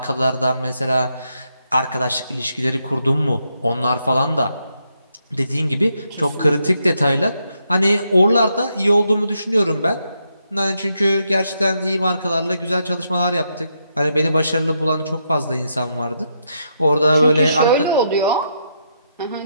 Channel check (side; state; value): both; inverted; correlation -0.79